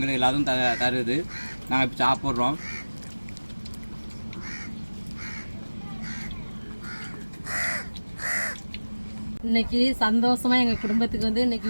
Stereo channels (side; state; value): both; inverted; correlation -1.00